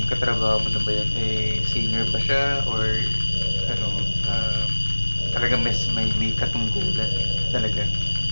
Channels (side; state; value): both; inverted; correlation -1.00